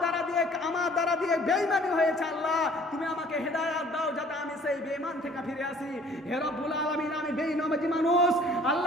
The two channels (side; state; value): both; normal; correlation 0.54